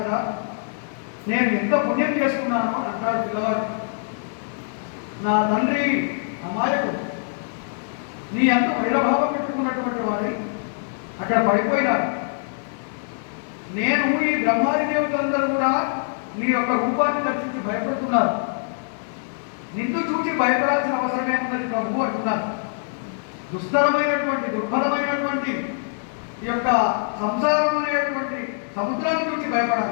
నేను ఎంత పుణ్యం చేసుకున్నానో అంటాడు పిల్లవాడు. నా తండ్రి అమాయకు, నీ అంత వైరభావం పెట్టుకున్నటువంటి వాడి అక్కడ పడిపోయినాడు. నేను ఈ బ్రహ్మాది దేవతలందరూ కూడా నీ యొక్క రూపాన్ని దర్శించి భయపడుతున్నారు. నిన్ను చూసి భయపడాల్సిన అవసరమే ఉన్నది ప్రభు అంటున్నారు. దుస్తరమైనటువంటి దుర్భరమైనటువంటి ఈ యొక్క సంసారం అనేటువంటి సముద్రాన్ని చూసి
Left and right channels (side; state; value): right; silent; digital silence